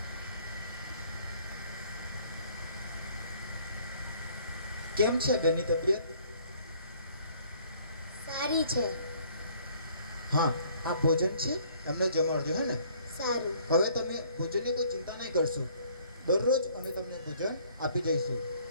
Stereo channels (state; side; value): inverted; both; correlation -0.59